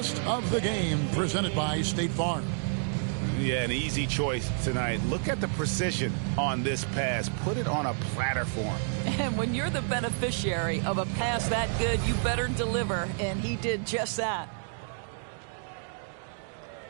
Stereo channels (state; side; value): silent; left; digital silence